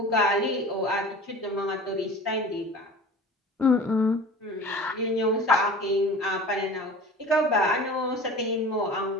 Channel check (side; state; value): both; normal; correlation 0.40